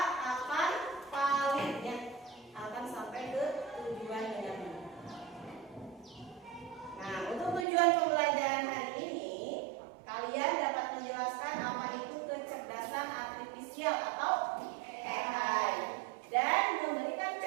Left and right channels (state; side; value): drops out; left; at 7.7 s